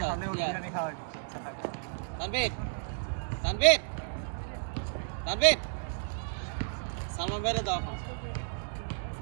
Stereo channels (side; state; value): left; silent; digital silence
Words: হালে ইয়া বিরিয়ানি খাওয়ার ইচ্ছা থাকে তানভীর তানভীর তানভীর সালমান বেরে দাও